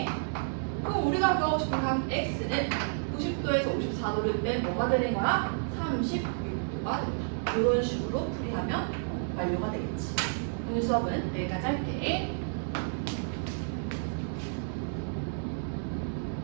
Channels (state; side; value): silent; left; 57 dB below the other